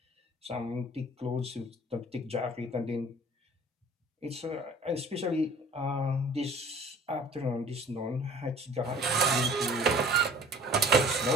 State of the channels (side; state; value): both; normal; correlation 0.48